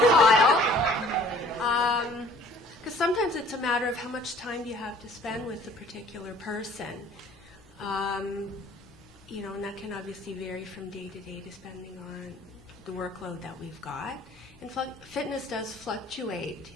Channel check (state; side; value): normal; both; correlation 0.54